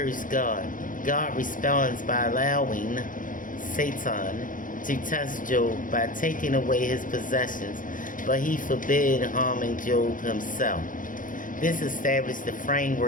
God. God responds by allowing Satan to test Job by taking away his possessions, but he forbid harming Job himself. This established the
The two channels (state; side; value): late; right; 0.39 ms